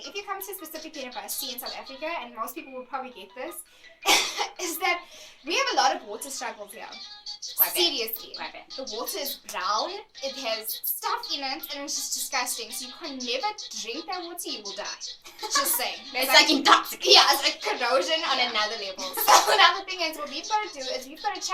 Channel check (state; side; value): identical; both; correlation 1.00